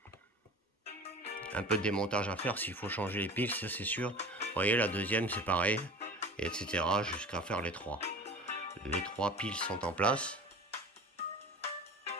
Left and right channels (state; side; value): normal; both; correlation 0.37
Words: Un peu de démontage à faire s'il faut changer les piles, ça c'est sûr. Vous voyez, la deuxième c'est pareil, et etc. jusqu'à faire les trois. Les trois piles sont en place.